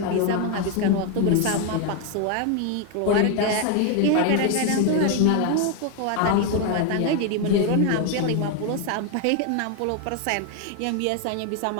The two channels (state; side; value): different; both; correlation 0.01